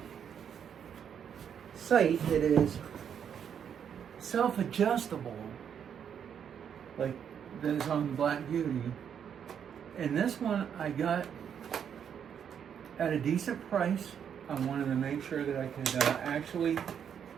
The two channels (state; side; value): quieter; left; 8.2 dB